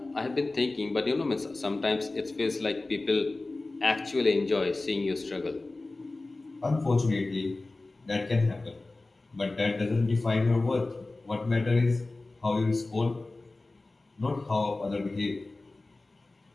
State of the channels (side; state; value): right; quieter; 3.1 dB